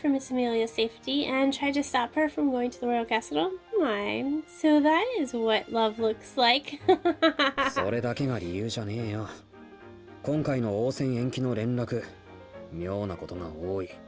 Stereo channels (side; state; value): both; identical; correlation 1.00